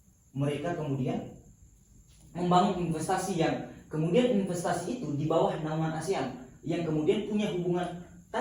mereka kemudian membangun investasi yang kemudian investasi itu di bawah naungan ASEAN yang kemudian punya hubungan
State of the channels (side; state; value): both; identical; correlation 1.00